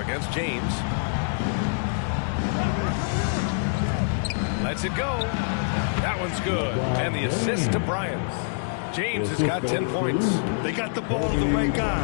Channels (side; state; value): right; silent; 61 dB below the other